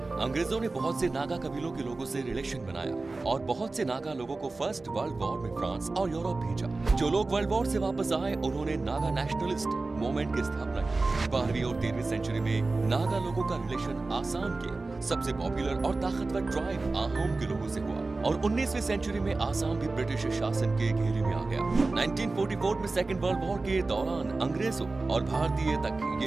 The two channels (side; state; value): left; quieter; 3.5 dB